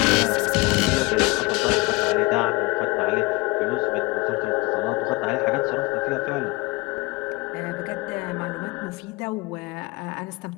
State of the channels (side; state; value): right; quieter; 23.9 dB